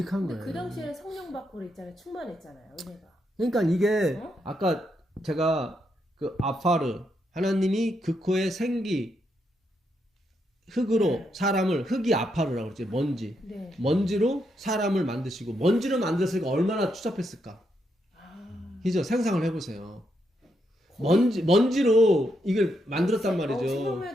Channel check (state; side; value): normal; both; correlation 0.80